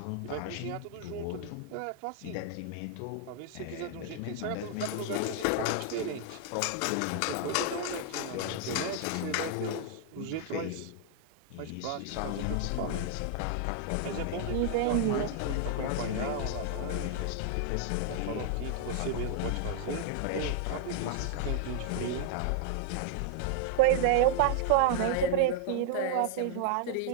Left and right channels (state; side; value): different; both; correlation 0.00